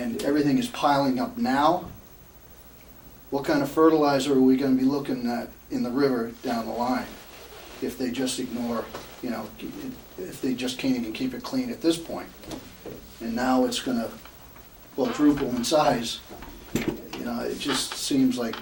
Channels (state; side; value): identical; both; correlation 1.00